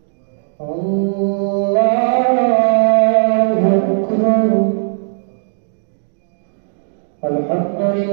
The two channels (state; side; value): silent; left; digital silence